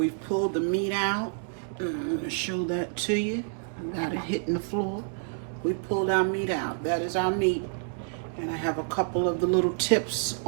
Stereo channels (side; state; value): left; silent; 59 dB below the other